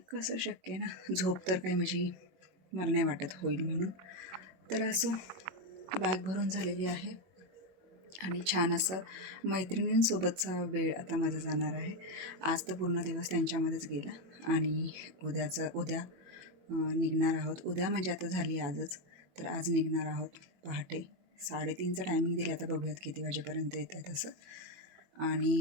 कसं शक्य आहे ना, झोप तर काही माझी मला नाही वाटत होईल म्हणून. तर असो, बॅग भरून झालेली आहे आणि छान असं मैत्रिणींसोबतचा वेळ आता माझा जाणार आहे. आज तर पूर्ण दिवस त्यांच्यामध्येच गेला आणि उद्या निघणार आहोत. उद्या म्हणजे आता झाली आजच, तर आज निघणार आहोत पहाटे 3:30चं टायमिंग दिलं. आता बघूयात किती वाजेपर्यंत येत आहे तसं.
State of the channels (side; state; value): left; late; 21 ms